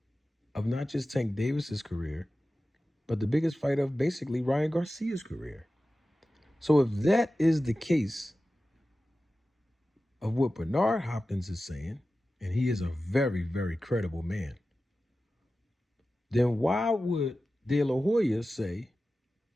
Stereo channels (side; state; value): both; normal; correlation 0.94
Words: of not just Tank Davis's career, but the biggest fight of basically Ryan Garcia's career. So if that is the case of what Bernard Hopkins is saying, and he is a very, very credible man, then why would De La Hoya say